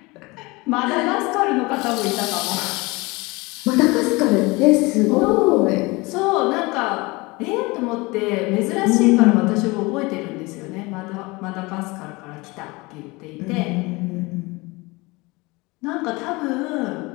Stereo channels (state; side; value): quieter; right; 24.1 dB